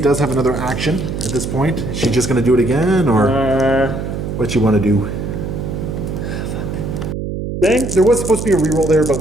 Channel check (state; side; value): noise; right; hum, 5 dB below the sound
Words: does have another action at this point. Is she just going to do it again, or what you want to do? There was supposed to be a reroll there, but